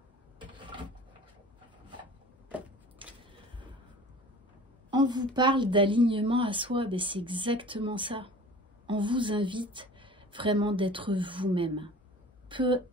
On vous parle d'alignement à soi, ben c'est exactement ça. On vous invite vraiment d'être vous-même. Peu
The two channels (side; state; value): both; normal; correlation 0.42